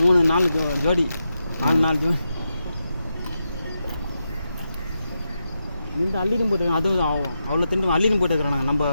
நாள் ஜோடி 4 நாள் ஜோடி இந்த அள்ளின்னு போட்டுருக்கான். அதுவும் அவ்வளோ திண்டு அள்ளின்னு போட்டுக்கிறான். நம்ம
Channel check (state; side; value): inverted; both; correlation -0.87